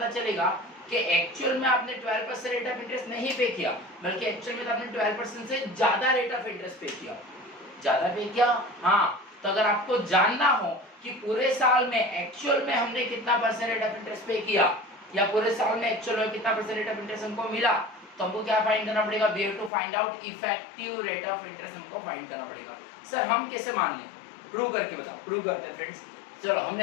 चलेगा कि एक्चुअल में आपने 12% रेट ऑफ इंटरेस्ट नहीं पे किया, बल्कि एक्चुअल में तो आपने 12% से ज्यादा रेट ऑफ इंटरेस्ट पे किया। ज्यादा पे किया? हाँ। तो अगर आपको जानना हो कि पूरे साल में एक्चुअल में हमने कितना परसेंट रेट ऑफ इंटरेस्ट पे किया या पूरे साल में एक्चुअल में कितना परसेंट रेट ऑफ इंटरेस्ट हमको मिला, तो हमको क्या फाइंड करना पड़ेगा? We have to find out effective rate of interest, हमको फाइंड करना पड़ेगा। सर हम कैसे मान लें? प्रूव करके बताओ। प्रूव करते हैं फ्रेंड्स। चलो,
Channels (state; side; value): drops out; right; at 19.7 s